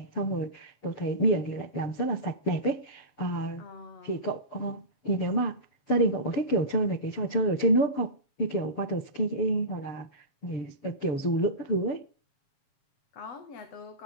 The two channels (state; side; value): late; right; 7.2 ms